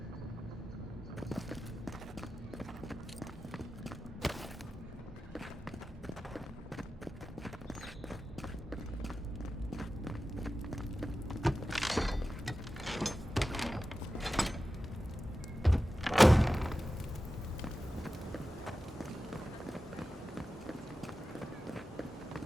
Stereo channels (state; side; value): normal; both; correlation 0.93